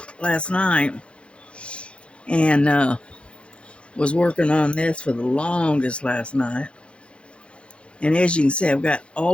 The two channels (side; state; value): right; late; 0.059 ms